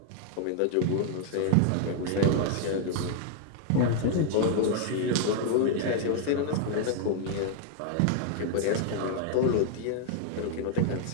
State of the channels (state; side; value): different; both; correlation 0.00